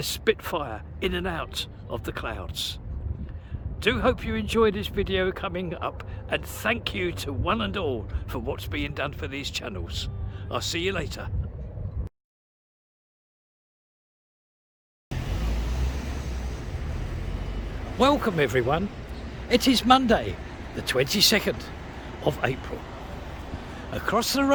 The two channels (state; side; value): identical; both; correlation 1.00